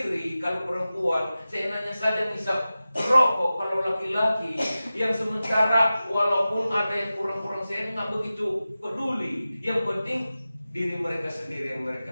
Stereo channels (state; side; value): inverted; both; correlation -0.95